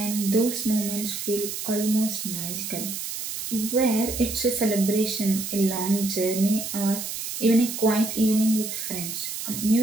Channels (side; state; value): right; noise; hiss, 6 dB below the sound